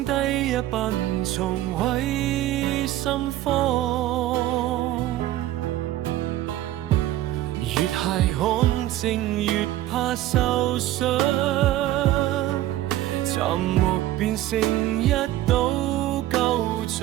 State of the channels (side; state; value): left; quieter; 14.3 dB